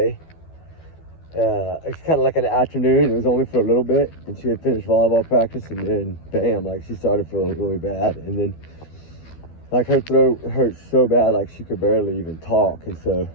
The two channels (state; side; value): late; right; 12 ms